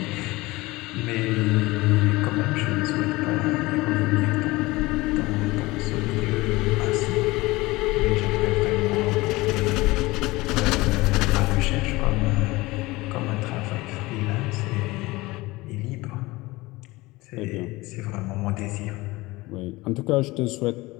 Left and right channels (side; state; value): right; quieter; 20.9 dB